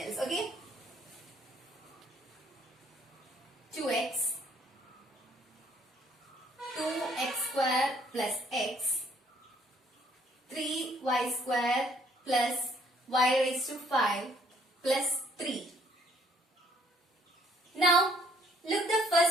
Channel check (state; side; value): normal; both; correlation 0.63